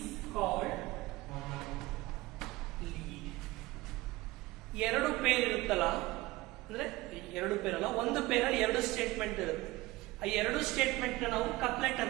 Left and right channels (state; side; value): quieter; left; 19.5 dB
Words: called lead. ಎರಡು ಪೇರ್ ಇರುತ್ತಲ್ಲ, ಅಂದ್ರೆ ಎರಡು ಪೇರ್ ಅಲ್ಲ, ಒಂದು ಪೇರಲ್ಲಿ ಎರಡು ಸ್ಟೇಟ್ಮೆಂಟ್ ಇರುತ್ತೆ, ಆ ಎರಡು ಸ್ಟೇಟ್ಮೆಂಟ್ ನಾವು ಕಪ್ಲೆಟ್